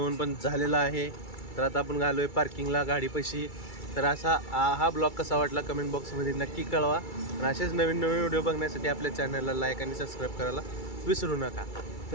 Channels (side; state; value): right; late; 2.3 ms